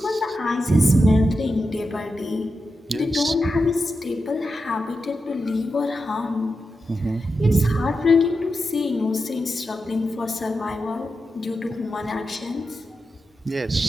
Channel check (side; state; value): both; normal; correlation 0.89